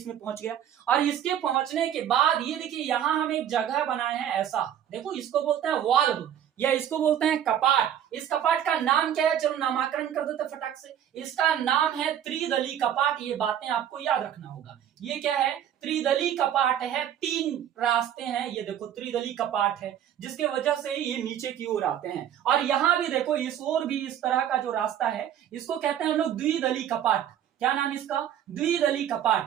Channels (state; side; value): quieter; left; 10.1 dB